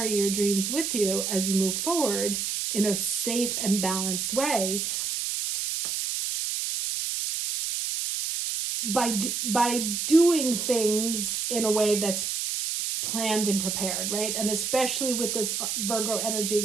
your dreams with you as you move forward in a safe and balanced way by doing things in a way that's planned and prepared, right? And especially with this Virgo energy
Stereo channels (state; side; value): noise; right; hiss, 1 dB below the sound